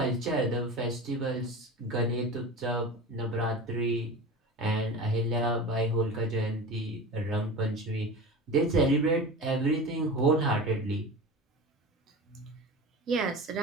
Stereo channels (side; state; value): both; normal; correlation 0.31